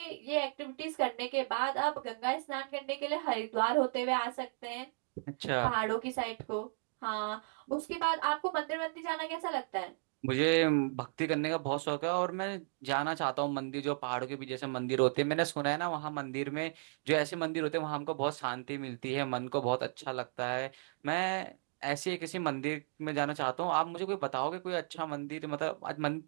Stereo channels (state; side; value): silent; left; digital silence